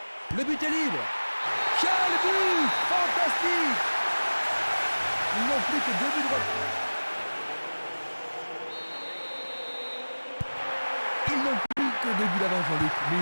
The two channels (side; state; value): both; inverted; correlation -1.00